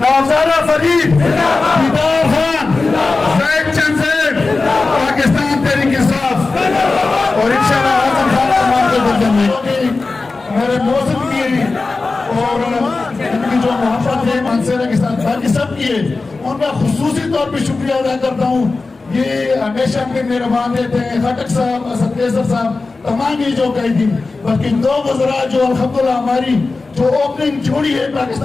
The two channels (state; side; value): quieter; right; 3.8 dB